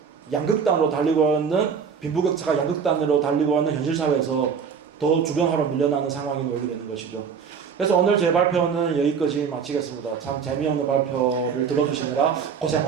양극단으로 달리고 있는, 빈부격차가 양극단으로 달리고 있는 현실 사회에서 더 주변화로 밀려나는 상황이 놓이게 되는 것이죠. 그래서 오늘 제 발표는 여기까지 마치겠습니다. 참 재미없는 발표를 들어주시느라 고생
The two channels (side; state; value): left; quieter; 6.5 dB